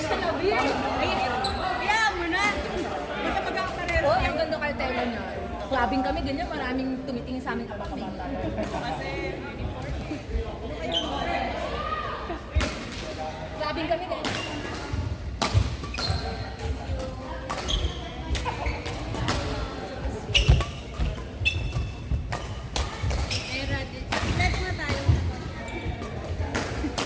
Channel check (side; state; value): both; identical; correlation 1.00